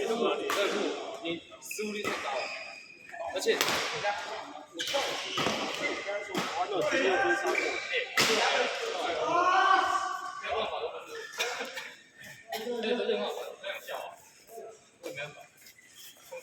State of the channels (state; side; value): identical; both; correlation 1.00